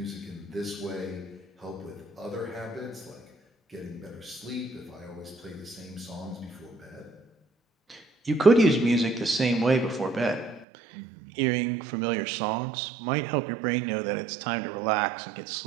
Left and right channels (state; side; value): drops out; left; at 10.7 s